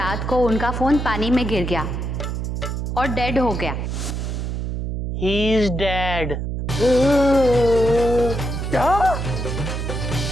को उनका फोन पानी में गिर गया और डेड हो गया। He is dead. क्या?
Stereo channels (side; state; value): right; noise; hum, 3 dB below the sound